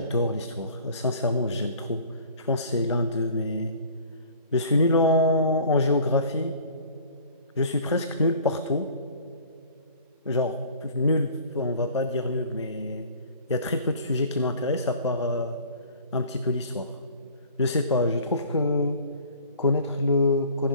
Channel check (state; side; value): inverted; both; correlation -0.48